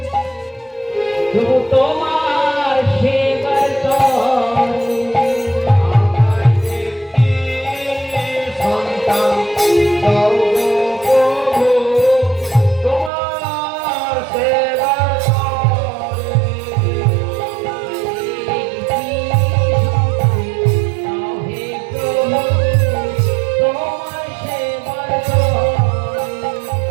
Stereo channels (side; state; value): left; drops out; at 13.1 s